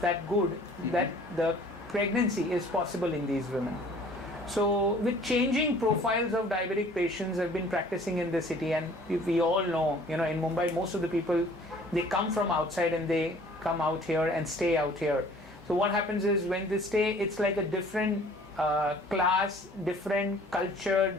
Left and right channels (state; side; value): normal; both; correlation 0.52